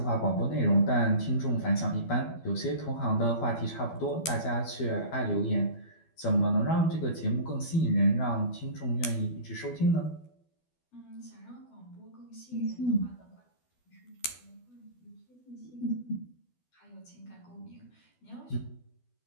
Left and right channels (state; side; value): late; right; 12 ms